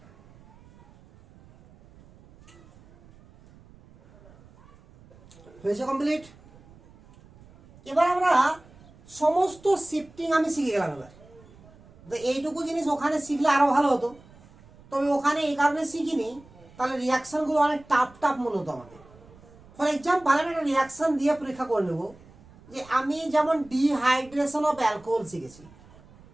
হয়েছে কমপ্লিট। এবার আমরা সমস্ত শিফটিং আমি শিখে গেলাম। এবার তো এইটুকু জিনিস ওখানে শিখলে আরো ভালো হতো, তবে ওখানে এই কারণে শিখিনি, তাহলে রিয়াকশনগুলো অনেক টাফ মনে হতো আমাকে। ফর এক্সাম্পল আমি একটা রিয়াকশন দিয়ে পরীক্ষা করে নেব, যে আমি যেমন ডিহাইড্রেশন অফ অ্যালকোহল শিখেছি,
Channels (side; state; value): right; noise; rumble, 25 dB below the sound